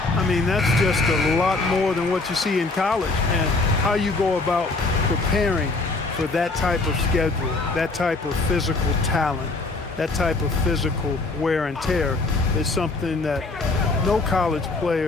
mean, that's just a lot more than what you see in college, and how you go about preparing for that type of schedule, that type of physical talent, that type of physical wear and tear is something that no college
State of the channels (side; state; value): right; quieter; 3.5 dB